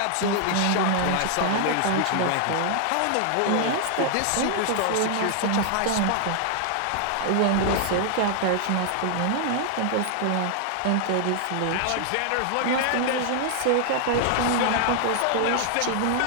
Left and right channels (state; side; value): different; both; correlation 0.00